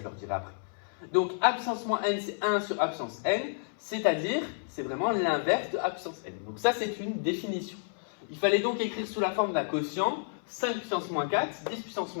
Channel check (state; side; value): silent; right; 57 dB below the other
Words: leur dirai après. Donc, a puissance moins n, c'est 1 sur a puissance n, c'est-à-dire, c'est vraiment l'inverse de a puissance n. Donc ça, c'est une définition. Il fallait donc écrire sous la forme d'un quotient 5 puissance moins 4, 10 puissance